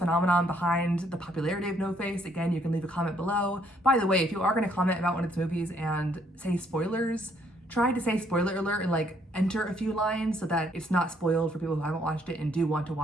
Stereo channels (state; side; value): normal; both; correlation 0.68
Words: behind the popularity of No Face, again, you can leave a comment below. By the way, if you are going to comment about one of its movies and say spoilers, try to say spoiler alert and like enter a few lines so that it's not spoiled for people who haven't watched it and do want to